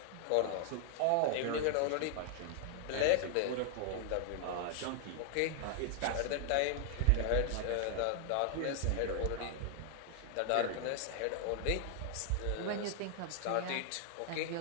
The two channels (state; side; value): different; both; correlation 0.00